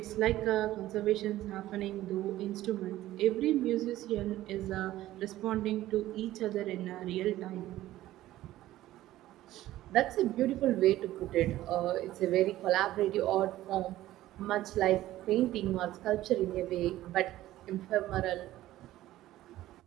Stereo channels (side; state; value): left; quieter; 15.0 dB